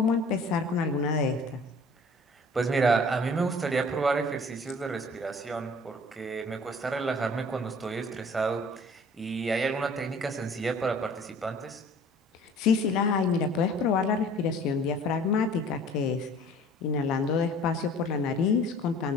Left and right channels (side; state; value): both; normal; correlation 0.50